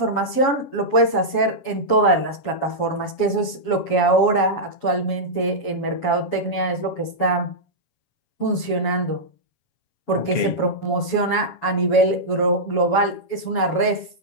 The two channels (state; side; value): late; right; 7.2 ms